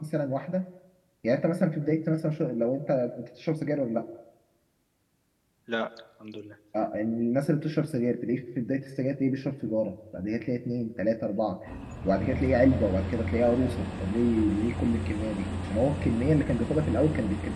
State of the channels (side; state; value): both; identical; correlation 1.00